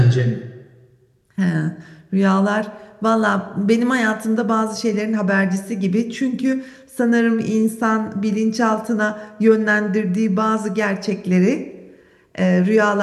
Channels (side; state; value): both; identical; correlation 1.00